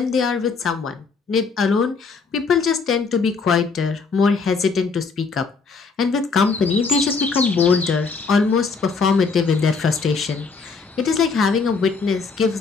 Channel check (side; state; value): right; quieter; 4.8 dB